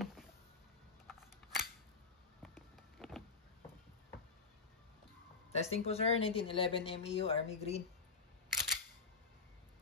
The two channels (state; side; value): quieter; right; 4.6 dB